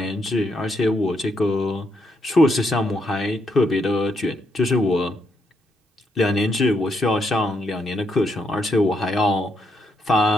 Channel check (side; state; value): both; normal; correlation 0.78